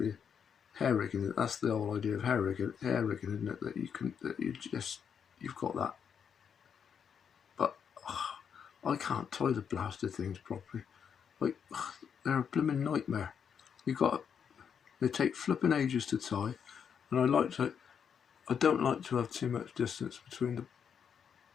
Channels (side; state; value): right; quieter; 7.4 dB